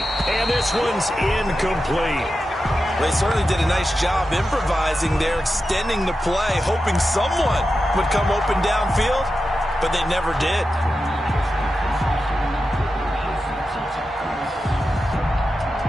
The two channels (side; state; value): both; normal; correlation 0.91